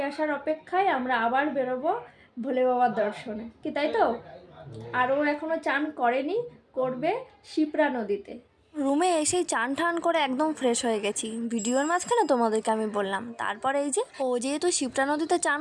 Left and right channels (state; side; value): identical; both; correlation 1.00